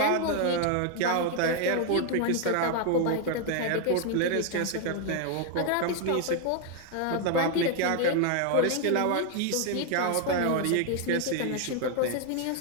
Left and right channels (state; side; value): different; both; correlation 0.01